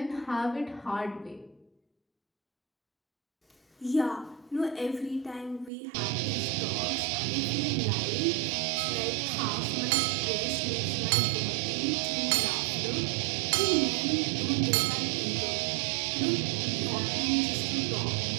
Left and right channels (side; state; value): left; drops out; at 5.7 s